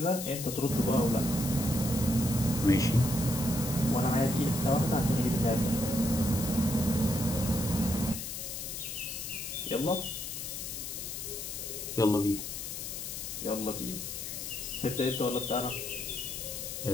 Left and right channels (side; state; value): left; noise; hiss, 6 dB below the sound